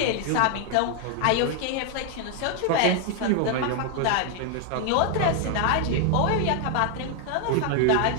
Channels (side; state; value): both; different; correlation 0.00